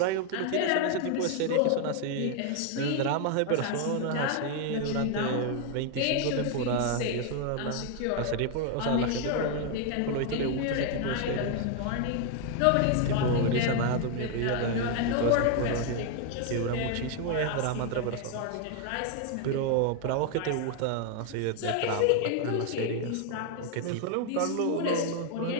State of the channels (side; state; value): both; different; correlation 0.00